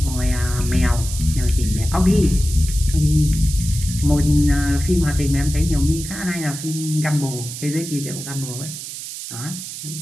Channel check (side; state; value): right; noise; hiss, 9 dB below the sound